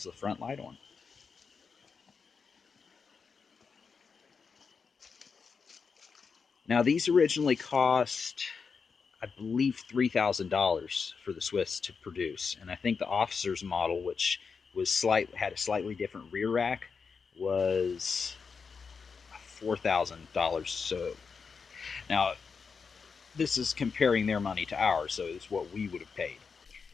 the front light on. Now, these originally cost, I believe, $3,000 for the Swiss to produce, and I think the officer's model, which was had a slightly different rear rack, was $4,000. So now this is comparing their money to ours, so it's what we would have paid.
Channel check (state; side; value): quieter; right; 5.5 dB